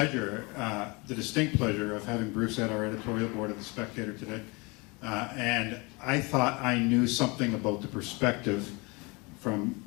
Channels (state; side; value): quieter; right; 27.4 dB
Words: the distinct pleasure of having Bruce at our editorial board of The Spectator today. And I thought I knew something about the perspective from